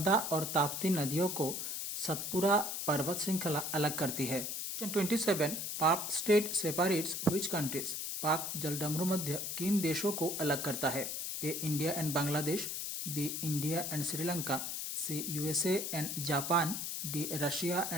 और ताप्ती नदियों को सतपुरा पर्वत श्रृंखला अलग करती है। क्वेश्चन 27, पाक स्टेट सेपरेट्स व्हिच कंट्रीज। पाक जलडमरू मध्य किन देशों को अलग करता है? A India and Bangladesh, B India and Sri Lanka, C USA and Japan, D Russia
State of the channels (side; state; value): left; noise; hiss, 3 dB below the sound